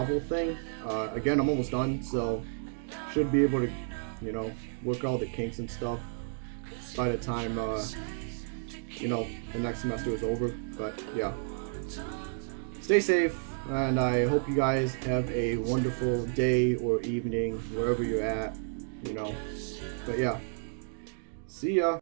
thing. Again, I'm almost done, so should be able to, you know, work out the kinks and stuff by the time, you know, the next semester is over. But yeah, stay safe, and I hope you guys have a wonderful day or evening wherever you're at, you know. But yeah, see ya.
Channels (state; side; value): silent; left; digital silence